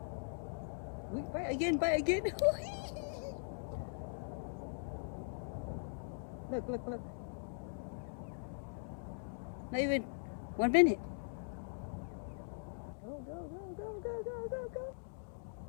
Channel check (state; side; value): silent; right; digital silence